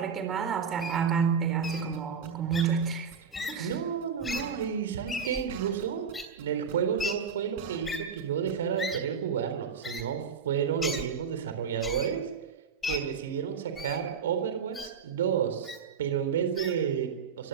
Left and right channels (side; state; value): left; quieter; 6.4 dB